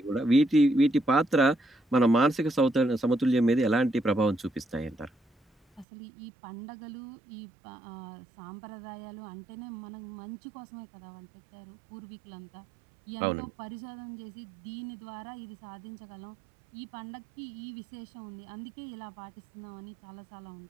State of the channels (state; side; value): drops out; left; at 5.9 s